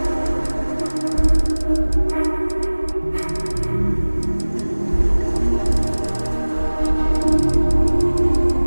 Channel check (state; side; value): inverted; both; correlation -1.00